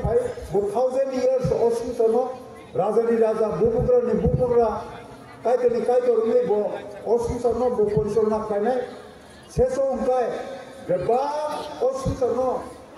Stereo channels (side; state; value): both; identical; correlation 1.00